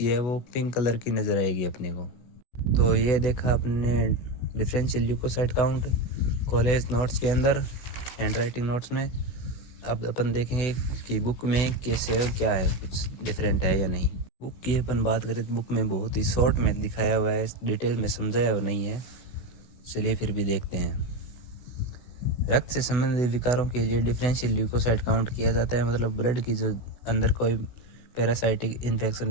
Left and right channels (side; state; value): right; late; 16 ms